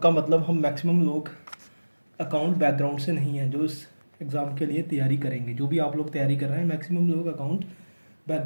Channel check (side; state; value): both; inverted; correlation -1.00